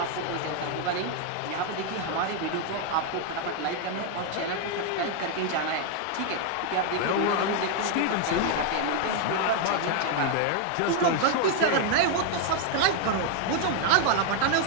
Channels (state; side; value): different; both; correlation 0.00